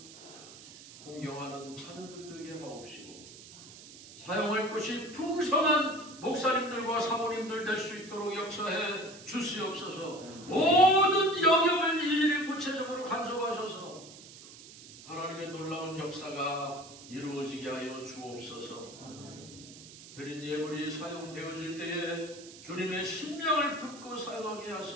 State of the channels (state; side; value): noise; right; hiss, 17 dB below the sound